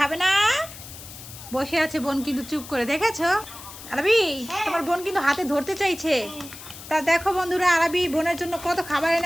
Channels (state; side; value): noise; left; hiss, 15 dB below the sound